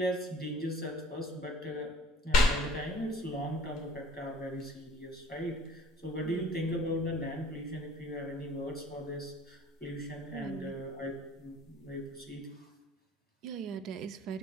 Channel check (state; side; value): normal; both; correlation 0.50